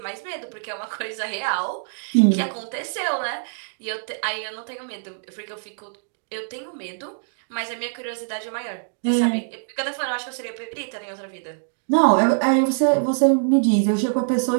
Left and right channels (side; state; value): left; silent; digital silence